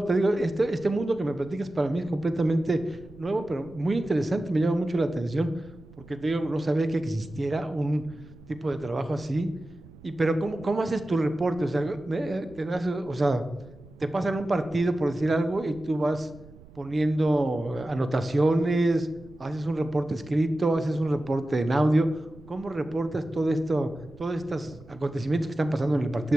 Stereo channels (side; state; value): right; noise; rumble, 21 dB below the sound